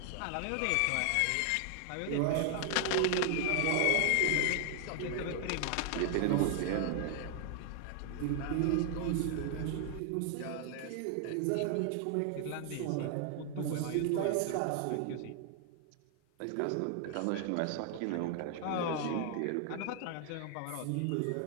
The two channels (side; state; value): both; different; correlation 0.00